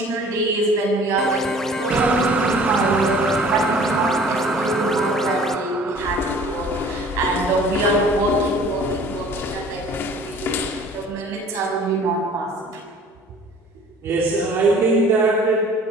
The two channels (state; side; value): normal; both; correlation 0.49